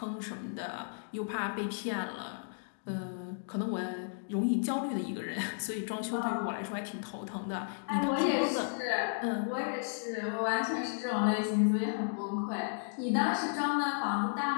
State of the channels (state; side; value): silent; right; digital silence